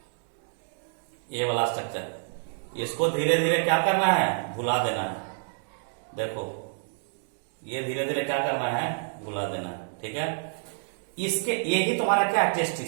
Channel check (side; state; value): left; silent; digital silence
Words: ये वाला स्ट्रक्चर, इसको धीरे धीरे क्या करना है, भुला देना है। देखो ये धीरे धीरे क्या करना है, भुला देना है। ठीक है, इसके ये ही तुम्हारा क्या है,